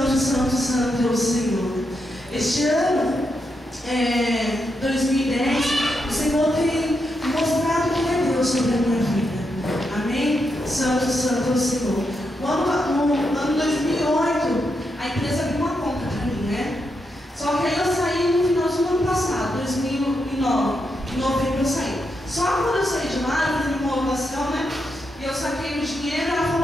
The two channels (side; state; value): both; normal; correlation 0.83